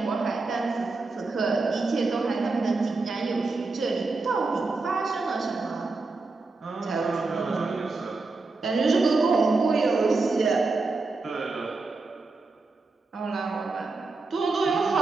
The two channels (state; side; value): quieter; left; 3.7 dB